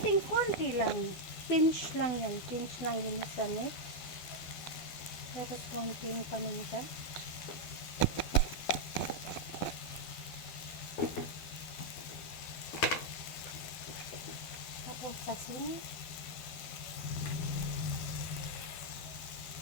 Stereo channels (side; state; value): right; late; 12 ms